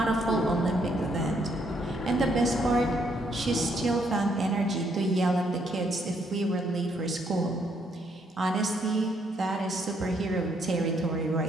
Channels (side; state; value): both; normal; correlation 0.72